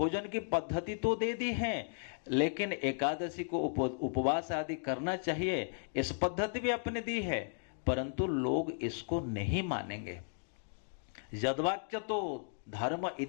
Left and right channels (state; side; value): silent; right; digital silence